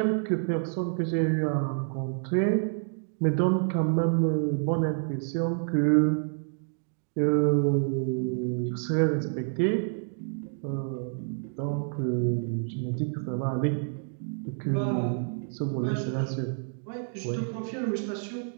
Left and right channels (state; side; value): silent; left; 59 dB below the other